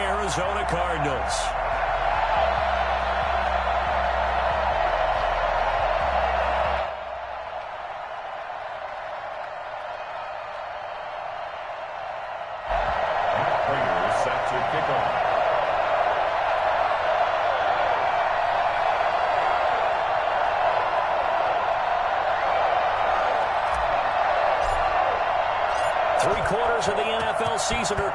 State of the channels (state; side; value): identical; both; correlation 1.00